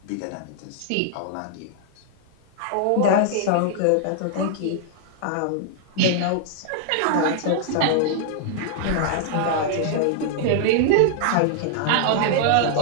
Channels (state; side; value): different; both; correlation -0.01